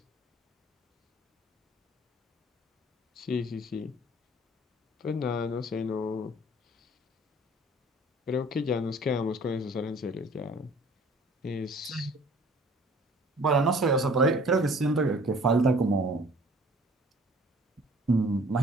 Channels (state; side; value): normal; both; correlation 0.52